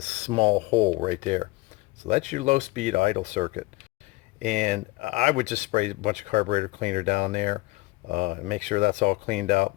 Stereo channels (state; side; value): quieter; right; 21.3 dB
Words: small hole right there. So that's your low speed idle circuit. And I would just spray a bunch of carburetor cleaner down there and make sure that's all cleaned